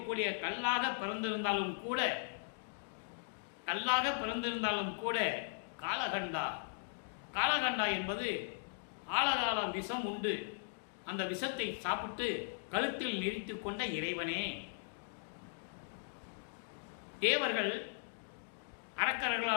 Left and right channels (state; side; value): silent; right; digital silence